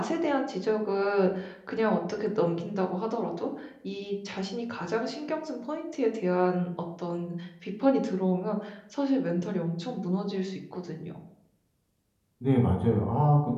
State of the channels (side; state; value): both; identical; correlation 1.00